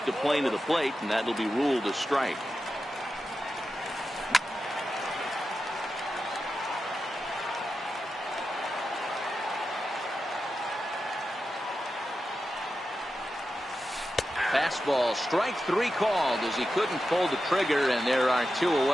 the plane of the plate, and that'll be ruled a strike. Fastball, strike three called as he couldn't pull the trigger, and there are two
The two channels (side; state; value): both; normal; correlation 0.91